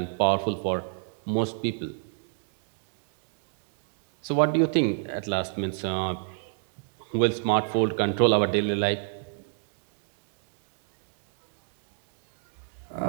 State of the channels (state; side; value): silent; left; digital silence